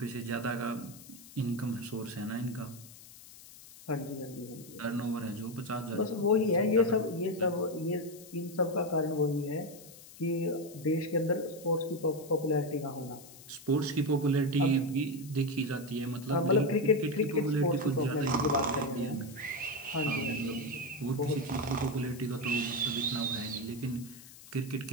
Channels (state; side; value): noise; left; hiss, 19 dB below the sound